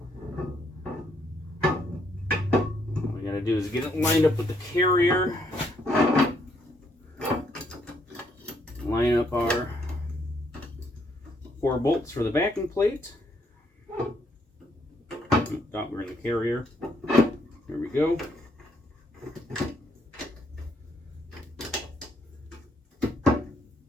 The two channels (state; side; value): normal; both; correlation 0.71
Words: All we got to do is get it lined up with the carrier. Line up our 4 bolts for the backing plate. Thought we were in the carrier. There we go.